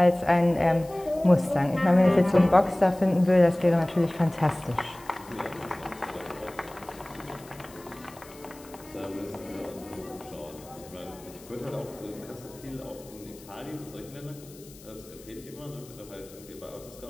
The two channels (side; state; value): left; noise; hiss, 22 dB below the sound